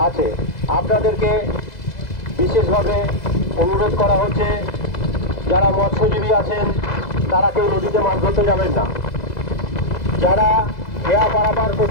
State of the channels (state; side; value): late; right; 2.0 ms